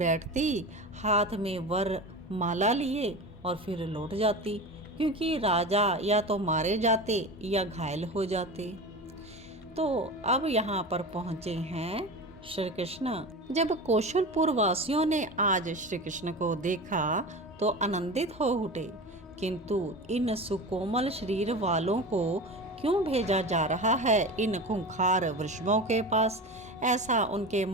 हाथ में वर माला लिए और फिर लौट जाती, क्योंकि राजा या तो मारे जाते या घायल हो जाते। तो अब यहाँ पर पहुँचे हैं श्री कृष्ण। जब कौशलपुर वासियों ने आज श्री कृष्ण को देखा तो आनंदित हो उठे, किंतु इन सुकोमल शरीर वालों को क्यों भेजा जा रहा है इन खूंखार वृषभों के पास, ऐसा उनके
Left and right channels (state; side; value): normal; both; correlation 0.29